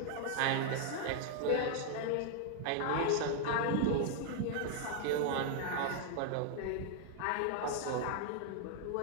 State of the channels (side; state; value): both; different; correlation 0.00